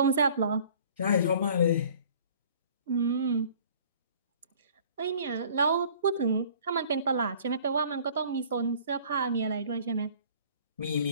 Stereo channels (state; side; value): inverted; both; correlation -0.51